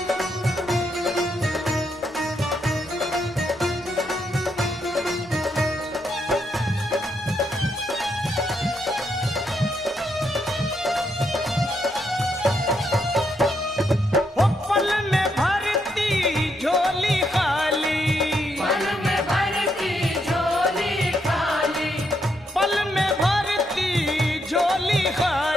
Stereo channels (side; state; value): both; normal; correlation 0.78